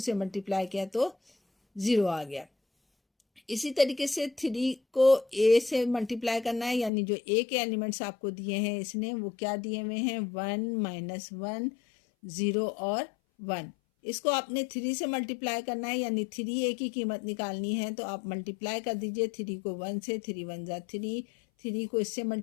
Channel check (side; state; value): right; drops out; at 6.9 s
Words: मल्टीप्लाई किया तो 0 आ गया। इसी तरीके से 3 को a से मल्टीप्लाई करना है, यानी जो a के एलिमेंट्स आपको दिए हैं इसने, वो क्या दिए हुए हैं, 1 माइनस 1 0 और 1। इसको आपने 3 से मल्टीप्लाई करना है, यानी 3a की कीमत निकालनी है तो आप मल्टीप्लाई कर दीजिए 3 को 1 से, 3 1 ज़ा 3, 3 को इससे